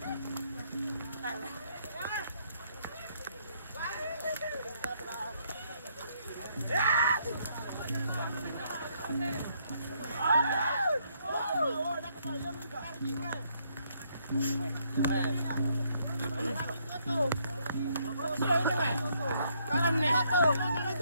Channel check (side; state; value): both; inverted; correlation -0.71